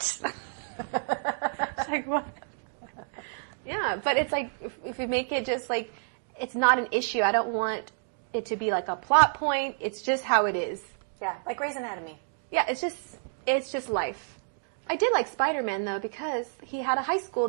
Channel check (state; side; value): silent; left; digital silence